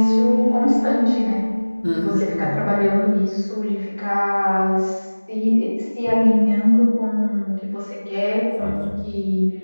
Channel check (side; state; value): both; inverted; correlation -1.00